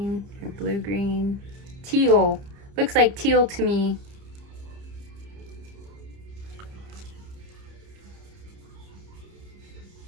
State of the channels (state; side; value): late; left; 30 ms